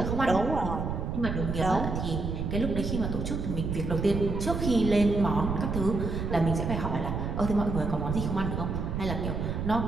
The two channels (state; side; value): noise; right; rumble, 3 dB below the sound